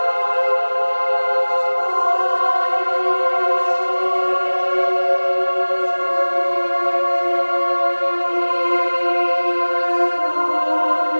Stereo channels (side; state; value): both; inverted; correlation -1.00